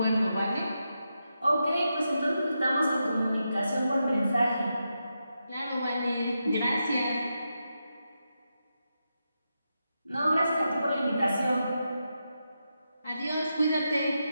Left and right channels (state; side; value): inverted; both; correlation -0.87